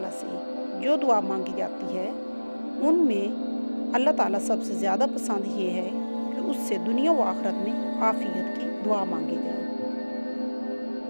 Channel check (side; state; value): both; inverted; correlation -1.00